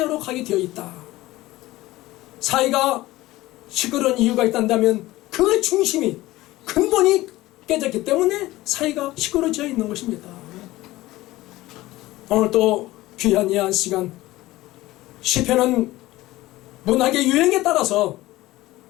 가게 되어 있다. 사회가 시끄러운 이유가 있다면 그 중심이, 근본이 깨졌기 때문에 사회가 시끄러워져 있는 것입니다. 오늘 또 귀한 이 한 시간, 시편은 문학의 유행에 따라서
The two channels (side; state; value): right; quieter; 17.7 dB